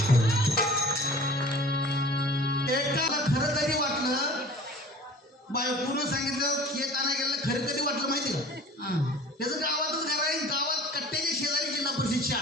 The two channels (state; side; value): normal; both; correlation 0.45